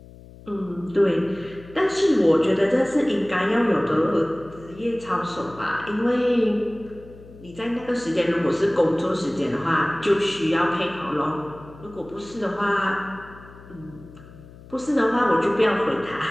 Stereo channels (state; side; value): noise; left; hum, 20 dB below the sound